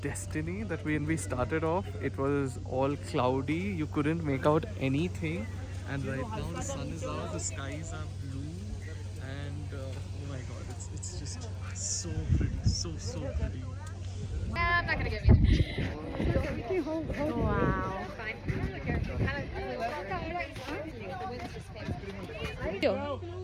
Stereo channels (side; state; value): both; identical; correlation 1.00